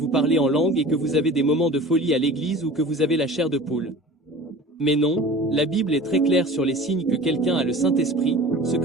parlez en langue et que vous avez des moments de folie à l'église ou que vous avez la chair de poule. Mais non, la Bible est très claire sur les signes que quelqu'un a le Saint-Esprit, ce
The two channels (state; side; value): normal; both; correlation 0.40